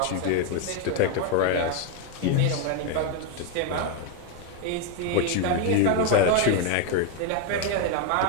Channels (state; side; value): different; both; correlation 0.02